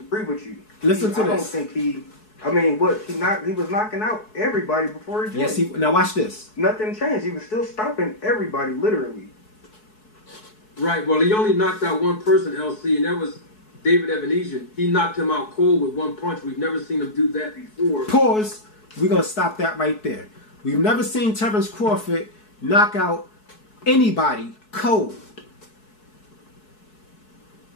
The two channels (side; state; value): right; late; 4.7 ms